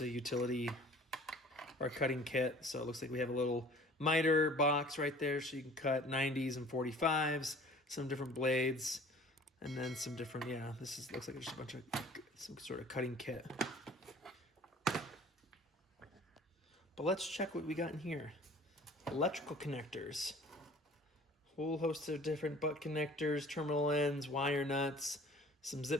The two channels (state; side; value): normal; both; correlation 0.49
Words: a utility or cutting kit. So it looks like we have a little miter box right there so you can cut 90s and 45s, some different blades, and then some different, yeah, looks like just a bunch of some sort of cutting kit. But let's check what we got in here. Electrical connectors. Whole host of different butt connectors, terminal ends, wire nuts, some